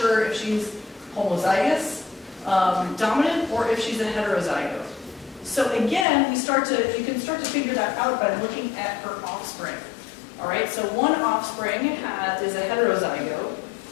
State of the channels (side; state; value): right; drops out; at 6.1 s